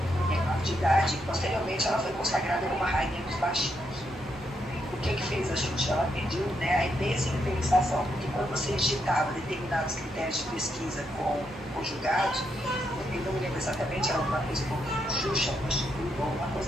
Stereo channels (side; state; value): both; normal; correlation 0.79